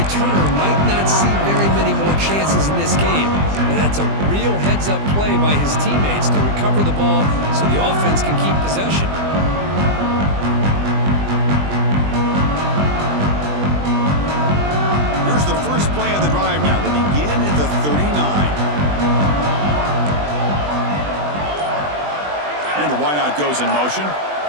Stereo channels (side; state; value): left; late; 20 ms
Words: might not see very many more chances in this game. But that's a real heads-up play by his teammates to recover the ball so the offense can keep possession. Here's the first play of the drive now. They begin at the 39. And the wideout goes in motion.